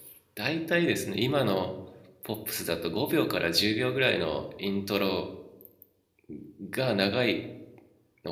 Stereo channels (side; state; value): both; identical; correlation 1.00